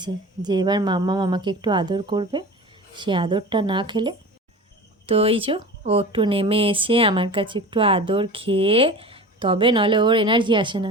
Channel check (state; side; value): normal; both; correlation 0.34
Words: যে এবার মাম্মা আমাকে একটু আদর করবে, সে আদরটা না খেলে। তো এই যে ও একটু নেমে এসে আমার কাছে একটু আদর খেয়ে তবে, নলে ওর এনার্জি আসে না।